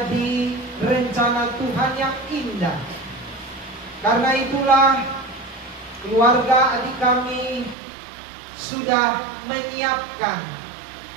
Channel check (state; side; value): drops out; left; at 7.8 s